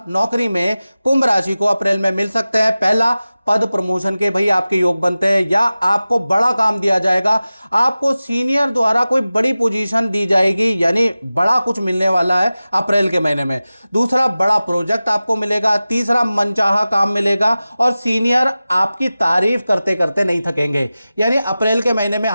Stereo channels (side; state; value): both; inverted; correlation -0.96